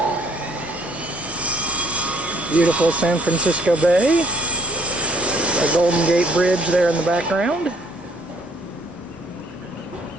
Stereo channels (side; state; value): both; normal; correlation 0.63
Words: Beautiful San Francisco Bay, a Golden Gate Bridge there in the background.